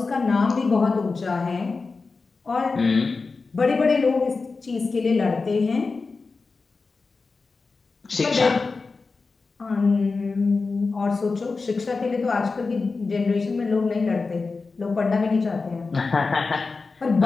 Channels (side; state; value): right; quieter; 4.2 dB